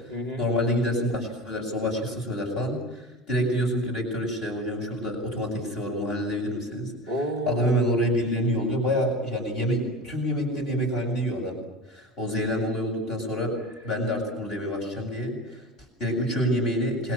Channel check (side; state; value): both; normal; correlation 0.31